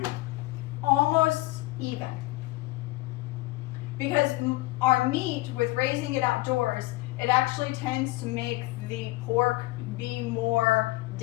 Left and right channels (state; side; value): quieter; right; 20.0 dB